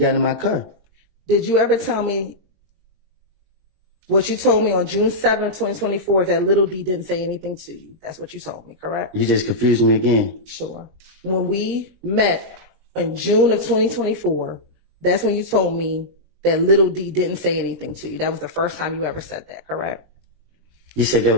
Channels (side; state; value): left; late; 20 ms